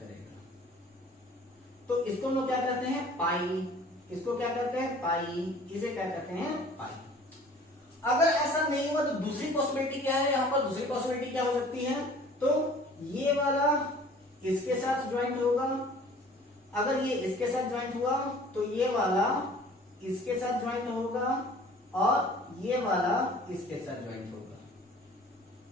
तो इसको हम लोग क्या कहते हैं, पाई। इसको क्या कहते हैं, पाई। इसे क्या कहते हैं, पाई। अगर ऐसा नहीं हुआ तो दूसरी पॉसिबिलिटी क्या है, यहां पर दूसरी पॉसिबिलिटी क्या हो सकती है, तो ये वाला इसके साथ ज्वाइंट होगा, अगर ये इसके साथ ज्वाइंट हुआ तो ये वाला इसके साथ ज्वाइंट होगा और ये वाला इसके साथ ज्वाइंट होगा,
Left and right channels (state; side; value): normal; both; correlation 0.49